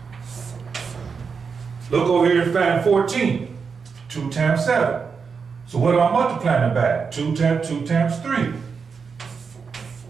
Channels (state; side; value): quieter; left; 5.6 dB